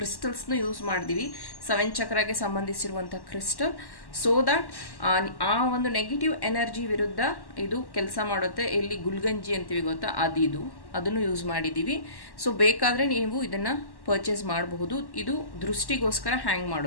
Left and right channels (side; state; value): right; late; 1.1 ms